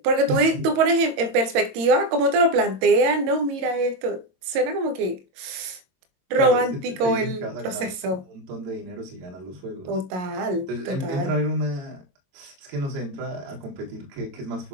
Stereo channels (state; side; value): late; left; 22 ms